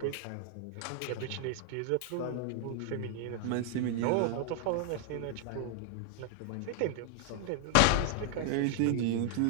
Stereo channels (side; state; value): both; different; correlation 0.00